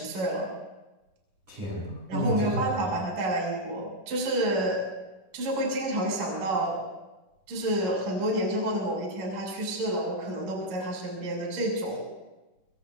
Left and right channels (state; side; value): late; left; 10 ms